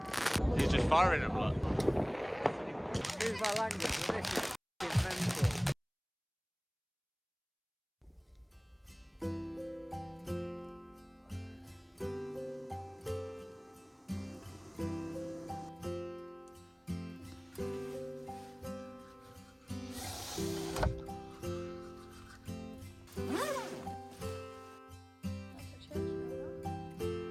He's just firing them, look. Excuse my language, but this is mental.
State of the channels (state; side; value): identical; both; correlation 1.00